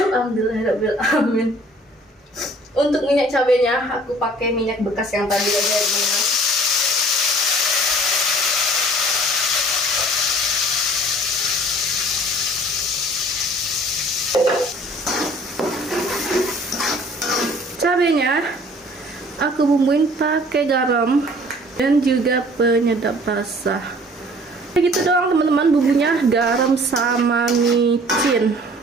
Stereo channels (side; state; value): both; normal; correlation 0.52